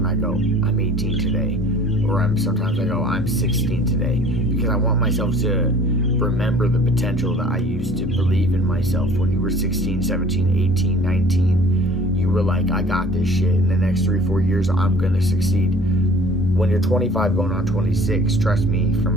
I go, I'm 18 today. Or sometimes I go, I'm 16 today. Because I want myself to remember the potential that I used to believe in myself. When you were 16, 17, 18, 19, you were like, I got this shit. In the next 3-4 years, I'm going to succeed. When you're 25 going on 26, trust me, from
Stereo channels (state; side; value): normal; both; correlation 0.49